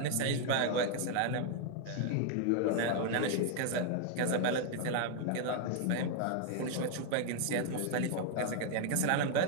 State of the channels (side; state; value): both; different; correlation 0.00